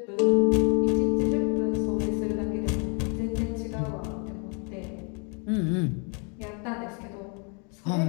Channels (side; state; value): right; quieter; 36.3 dB